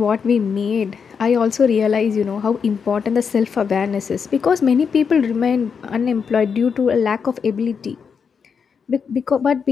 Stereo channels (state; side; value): quieter; right; 6.3 dB